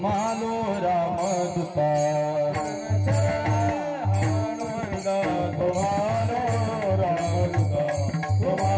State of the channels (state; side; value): identical; both; correlation 1.00